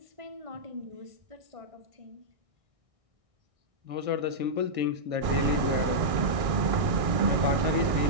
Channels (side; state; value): left; late; 1.6 ms